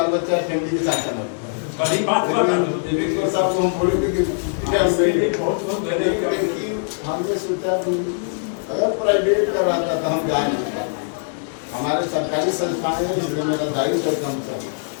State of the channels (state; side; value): silent; right; digital silence